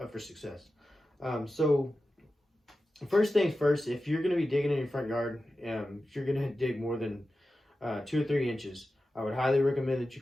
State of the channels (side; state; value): both; normal; correlation 0.93